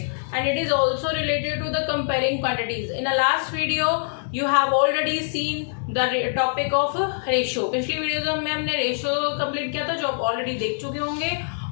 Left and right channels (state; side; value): silent; right; 62 dB below the other